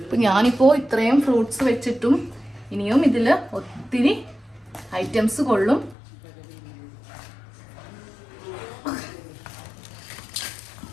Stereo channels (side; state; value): right; drops out; at 6.0 s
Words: ഇപ്പൊ ഞാനിപ്പോ ഇത്രയും ഫ്രൂട്ട്സ് വെച്ചിട്ടും ഇനിയും ഇതിൽ ഒത്തിരി ഐറ്റംസ് കൊള്ളും.